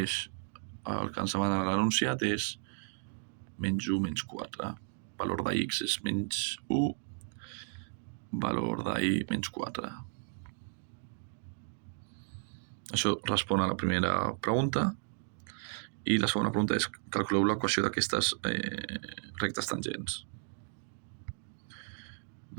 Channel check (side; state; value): left; silent; 55 dB below the other